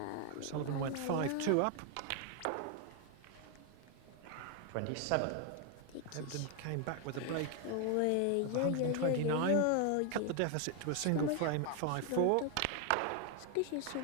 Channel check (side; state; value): both; different; correlation 0.01